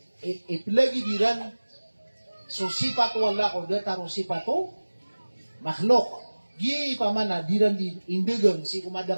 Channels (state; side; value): inverted; both; correlation -1.00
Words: ipilagi diran so sifat wala ko dataro sifatu makhluk gi pamana diran di indegang si